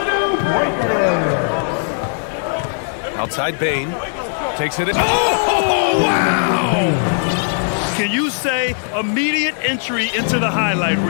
Outside Bain takes it in. Oh, wow! Can you say immediate entry into the highlight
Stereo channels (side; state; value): right; silent; 57 dB below the other